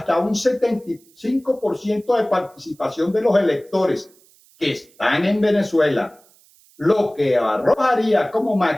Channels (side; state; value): right; noise; hiss, 30 dB below the sound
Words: un 75% de participación de los electores que están en Venezuela, lo que arrojaría como